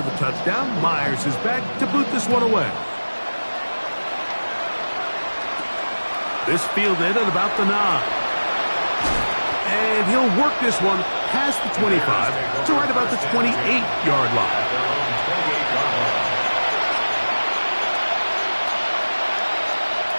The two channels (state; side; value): inverted; both; correlation -1.00